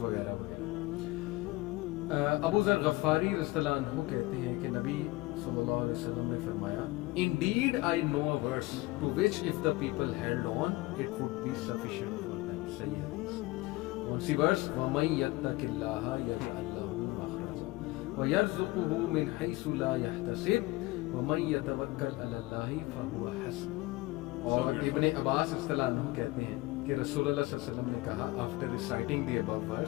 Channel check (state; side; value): quieter; right; 20.5 dB